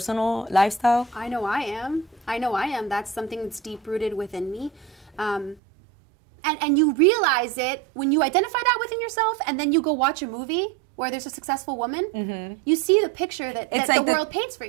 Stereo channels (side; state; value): left; drops out; at 5.6 s